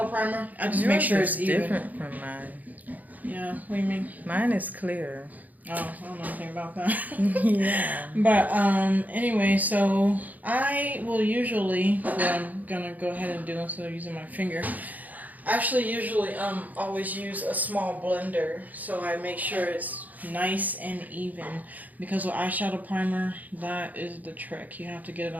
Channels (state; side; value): late; left; 0.080 ms